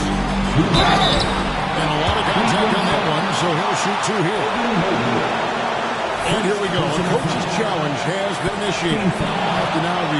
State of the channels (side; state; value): both; identical; correlation 1.00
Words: And a lot of contact on that one, so he'll shoot 2 here. And here we go. The coach's challenge has been initiated. Have to now